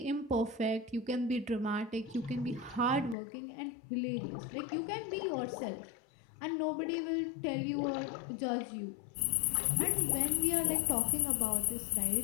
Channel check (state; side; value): drops out; right; at 3.2 s